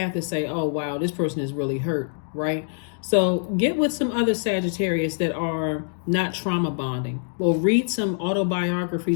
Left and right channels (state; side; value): silent; right; digital silence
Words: to say, oh, wow, this person is really hurt, right? So get with some other Sagittarius that are not trauma bonding. Or read some